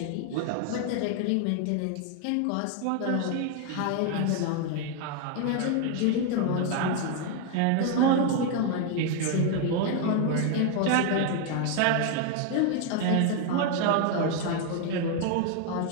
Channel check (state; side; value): different; both; correlation 0.01